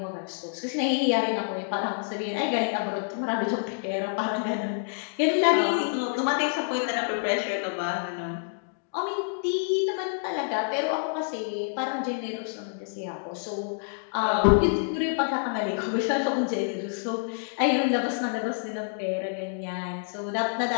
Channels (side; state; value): right; silent; digital silence